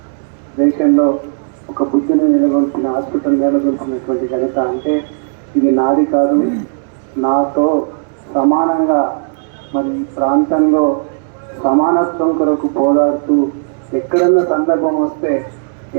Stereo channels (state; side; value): silent; left; digital silence